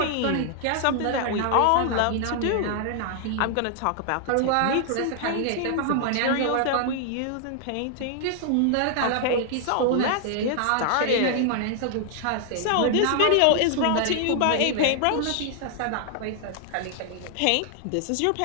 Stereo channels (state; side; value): different; both; correlation 0.00